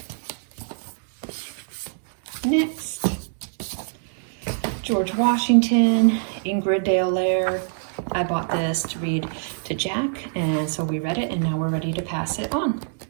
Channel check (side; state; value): left; silent; digital silence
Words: Next, George Washington, Ingrid Dale Laird. I bought this to read to Jack, and so we read it, and now we're ready to pass it on.